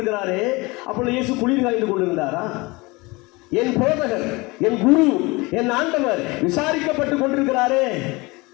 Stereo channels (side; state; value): right; quieter; 24.2 dB